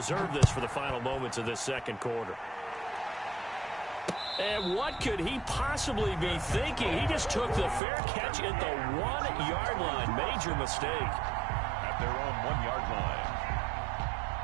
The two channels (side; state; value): left; drops out; at 7.8 s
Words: this for the final moments of this second quarter. And what could he possibly be thinking? He just took the fair catch at the 1-yard line. Major mistake. At their own 1-yard line.